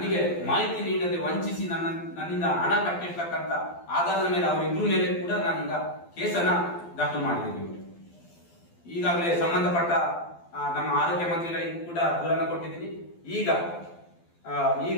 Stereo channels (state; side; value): late; right; 12 ms